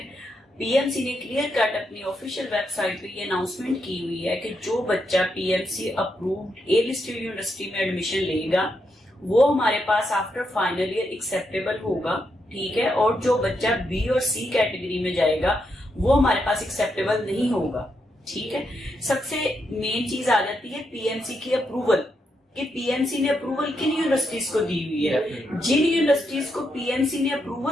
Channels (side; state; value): both; normal; correlation 0.81